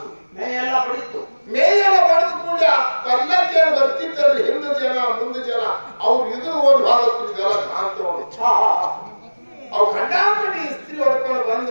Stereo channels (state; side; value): inverted; both; correlation -1.00